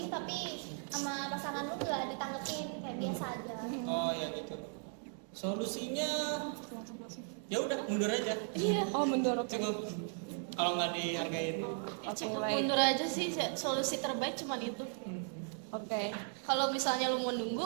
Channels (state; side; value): silent; left; 53 dB below the other